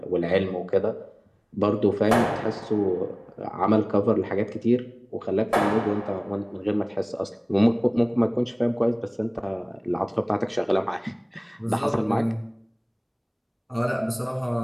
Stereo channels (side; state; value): both; identical; correlation 1.00